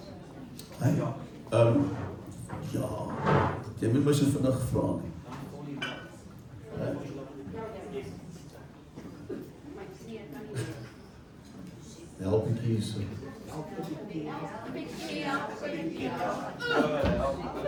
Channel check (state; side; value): identical; both; correlation 1.00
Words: Hey, ja, jy moet my so vinnig vra nie. Help ek hier so.